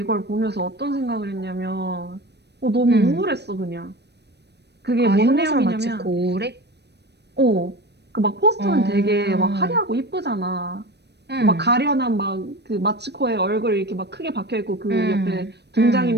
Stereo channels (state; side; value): late; left; 0.49 ms